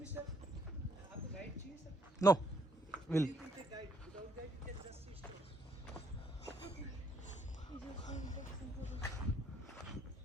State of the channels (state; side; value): normal; both; correlation 0.70